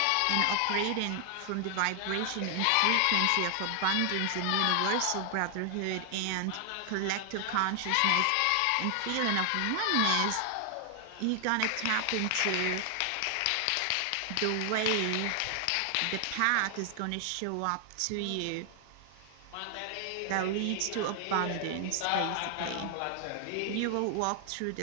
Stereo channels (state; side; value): different; both; correlation 0.00